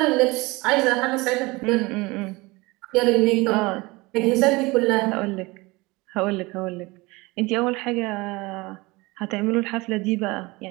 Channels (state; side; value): quieter; left; 23.3 dB